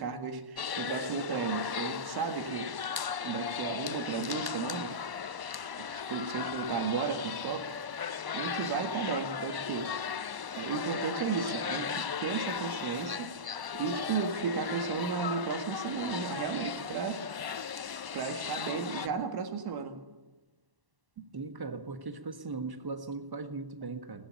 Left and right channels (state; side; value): late; left; 1.1 ms